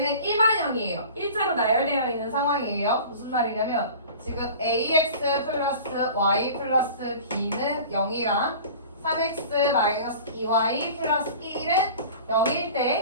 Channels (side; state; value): both; inverted; correlation -0.40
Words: 일반형이에요. 일자로 나열되어 있는 상황이에요. 무슨 말이냐면 지금 ax 플러스 y 플러스 b는 0이랑 3x 마이너스 2y 플러스 1은 0일